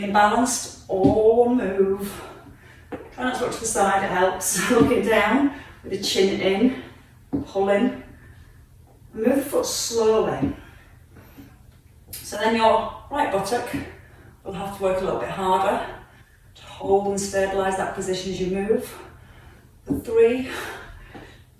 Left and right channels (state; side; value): identical; both; correlation 1.00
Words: balanced, all move. Try not to look to the side, it helps. Looking down with the chin in, pull in. Move the foot slowly. So then your right buttock will have to work a little bit harder to hold and stabilise that position as you move. 3,